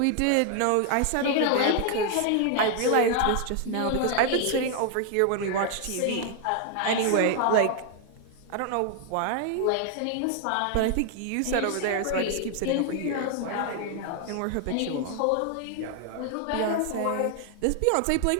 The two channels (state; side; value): different; both; correlation 0.00